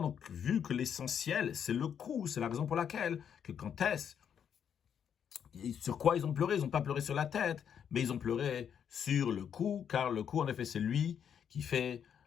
donc, vu que l'essentiel, c'est le cou, c'est la raison pour laquelle, que quand est-ce, sur quoi ils ont pleuré? Ils n'ont pas pleuré sur la tête, mais ils ont pleuré sur le cou, car le cou, en effet, c'est lui qui fait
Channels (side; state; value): right; quieter; 8.2 dB